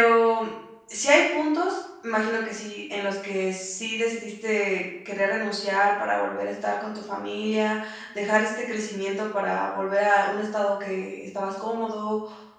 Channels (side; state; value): both; identical; correlation 1.00